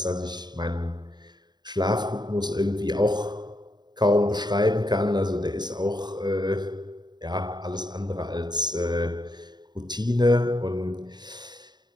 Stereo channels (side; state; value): left; late; 0.21 ms